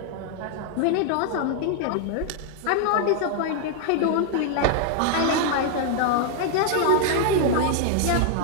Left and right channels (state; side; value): different; both; correlation 0.00